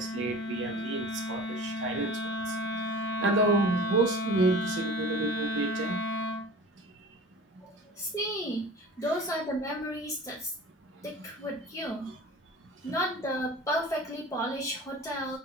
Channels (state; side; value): normal; both; correlation 0.39